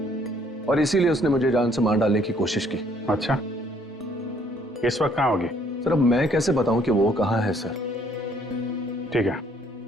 और इसीलिए उसने मुझे जान से मार डालने की कोशिश की। अच्छा, इस वक्त कहाँ होगी? सर अब मैं कैसे बताऊं कि वो कहाँ है सर? ठीक है,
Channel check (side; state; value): both; normal; correlation 0.64